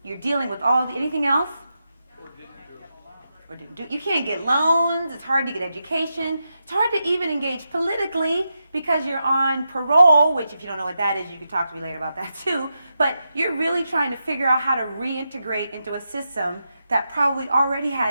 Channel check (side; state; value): both; inverted; correlation -0.87